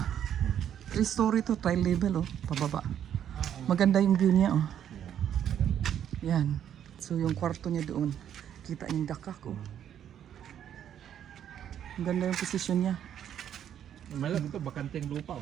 3-story to, tri-level oh, pababa. Maganda yung view niya oh. Yan. So yung kwarto niya doon, kita yung dakak oh. Ang ganda yung position niya. Malap ito, bakanting lupa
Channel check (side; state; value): left; quieter; 9.8 dB